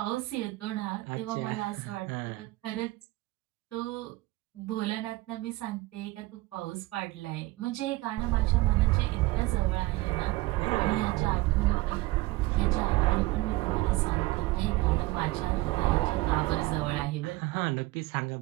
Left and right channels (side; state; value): left; quieter; 19.9 dB